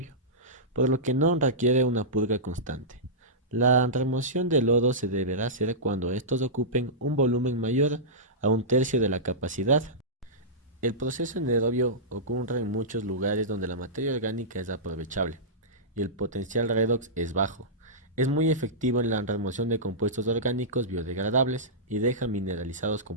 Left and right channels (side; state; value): both; normal; correlation -0.15